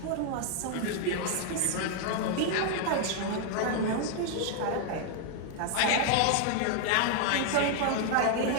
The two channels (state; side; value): different; both; correlation 0.00